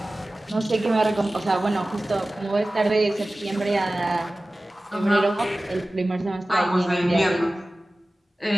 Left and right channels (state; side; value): normal; both; correlation 0.97